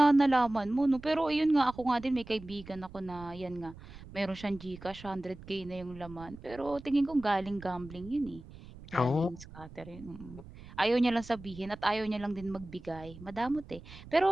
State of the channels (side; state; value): right; noise; rumble, 17 dB below the sound